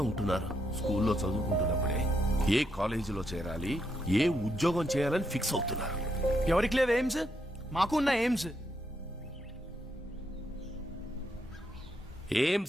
ఉంటున్నారు. స్కూల్లో చదువుకుంటున్నప్పుడే ఏ కాలేజీలో చేరాలి, ఏ ఉద్యోగం చేయాలని ఫిక్స్ అవుతున్నారు. ఎవరికి లేవు ఎయిమ్స్? మాకు ఉన్న ఎయిమ్స్.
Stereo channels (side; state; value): both; normal; correlation 0.78